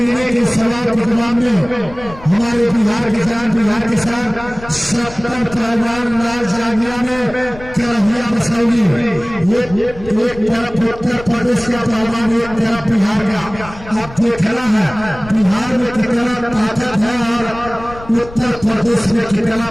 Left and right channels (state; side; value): noise; left; rumble, 16 dB below the sound